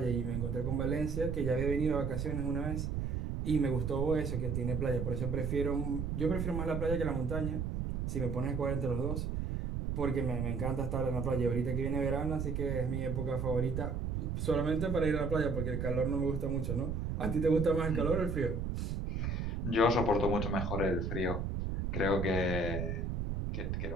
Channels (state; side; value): noise; right; rumble, 2 dB below the sound